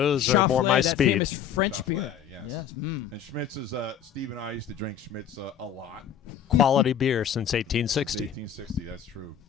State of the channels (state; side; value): quieter; right; 8.8 dB